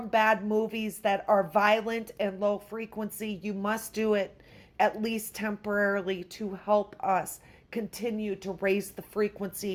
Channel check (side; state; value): both; identical; correlation 1.00